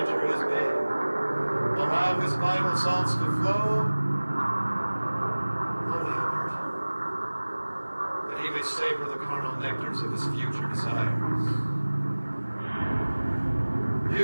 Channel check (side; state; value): both; inverted; correlation -1.00